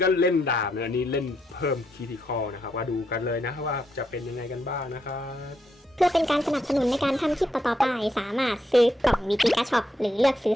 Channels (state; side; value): normal; both; correlation 0.79